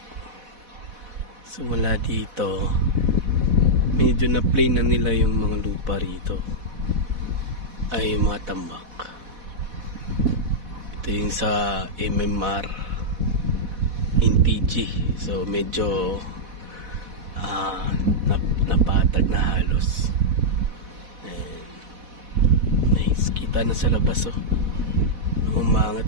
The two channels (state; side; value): late; left; 4.1 ms